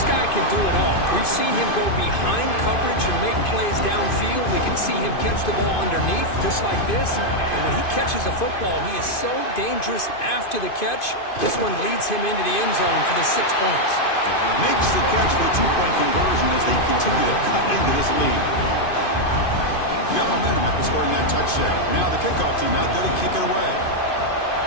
guy can do it all. We've seen him go behind coverage and make plays downfield. We can see him catch the ball underneath, just like this. And when he catches a football, he is so dangerous after the catch. This one leads him into the end zone for the 6 points. Makes the catch for the 2-point conversion as they continue to cut into this lead. Got momentum after scoring that touchdown. Now the kickoff team out there to kick it away.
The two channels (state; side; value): late; right; 2.5 ms